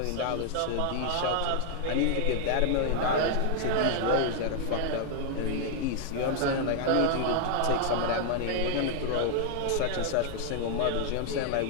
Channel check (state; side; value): different; both; correlation 0.00